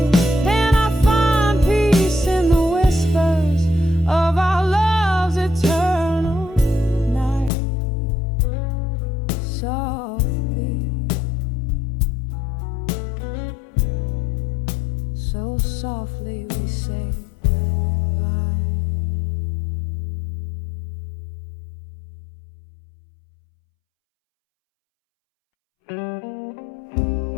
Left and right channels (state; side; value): drops out; right; at 7.5 s